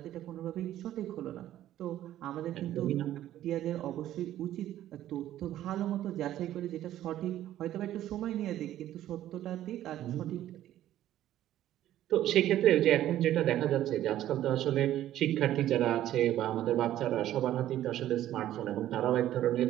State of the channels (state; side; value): quieter; left; 12.8 dB